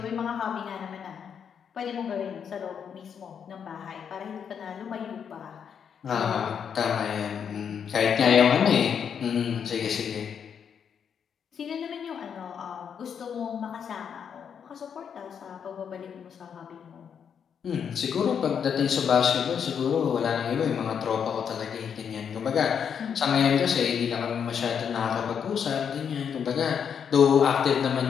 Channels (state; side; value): quieter; right; 7.5 dB